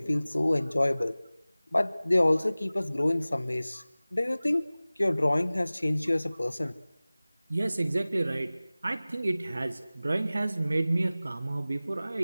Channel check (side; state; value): both; inverted; correlation -0.98